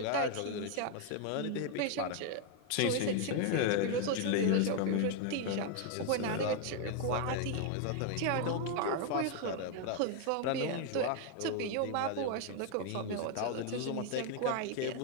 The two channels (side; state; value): both; different; correlation 0.01